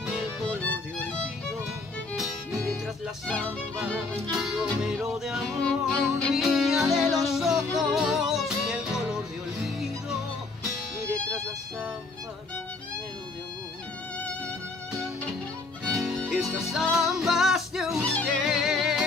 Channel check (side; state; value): right; quieter; 3.6 dB